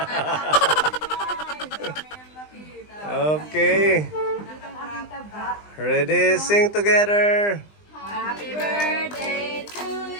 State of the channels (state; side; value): late; right; 20 ms